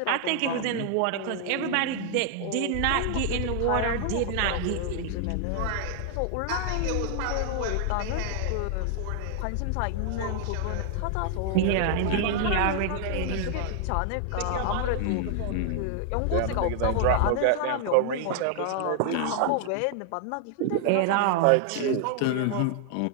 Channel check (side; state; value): both; different; correlation 0.00